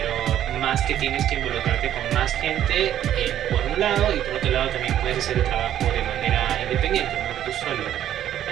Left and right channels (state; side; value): quieter; left; 11.2 dB